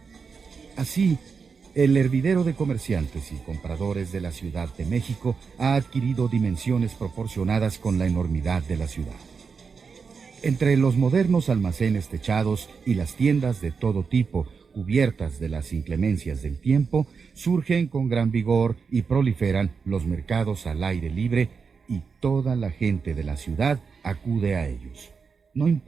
Así, el hervidero de comerciantes y compradores de la Ciudad de México ha adquirido dimensiones proporcionadas con la enormidad de la ciudad. Entre los modernos almacenes techados y las tiendas de todo tipo, cubiertas de las inclemencias del tiempo, surgen con gran vigor y proliferan los mercados al aire libre y toda la gente de la ciudad acude a ellos, no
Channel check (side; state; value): left; quieter; 5.5 dB